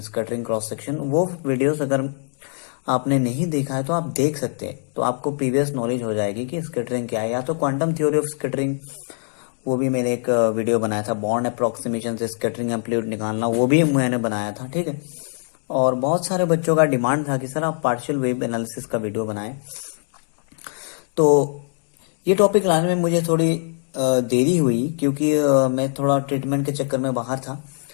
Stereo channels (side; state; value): right; silent; 60 dB below the other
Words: scattering cross section, वो वीडियोस अगर आपने नहीं देखा है तो आप देख सकते हैं, तो आपको प्रीवियस नॉलेज हो जाएगी कि स्कैटरिंग क्या है। या तो क्वांटम थ्योरी ऑफ स्कैटरिंग, वो भी मैंने एक वीडियो बनाया था, बॉन्ड अप्रोक्सीमेशन से स्कैटरिंग एम्पलीट्यूड निकालना, वो भी मैंने बनाया था। ठीक है, और बहुत सारे बच्चों का डिमांड था कि सर आप पार्शियल वेव एनालिसिस का वीडियो बनाएं। तो ये टॉपिक लाने में मुझे थोड़ी देरी हुई, क्योंकि मैं थोड़ा ट्रीटमेंट के चक्कर में बाहर था।